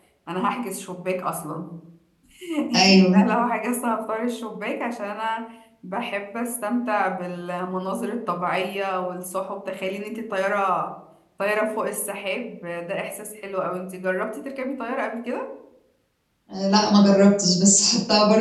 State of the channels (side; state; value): both; identical; correlation 1.00